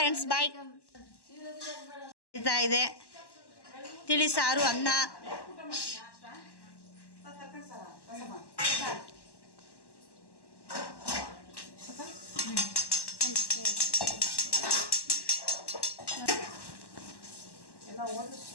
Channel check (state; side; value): late; right; 1.1 ms